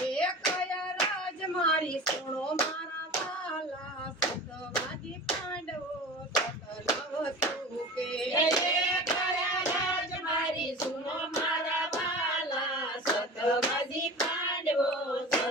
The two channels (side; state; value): both; normal; correlation 0.35